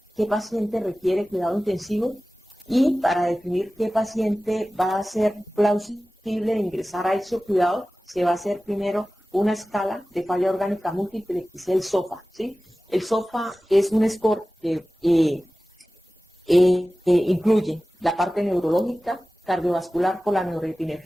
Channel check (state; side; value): normal; both; correlation 0.96